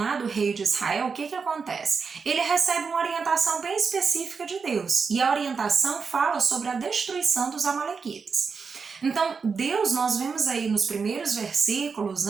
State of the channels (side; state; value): left; quieter; 5.3 dB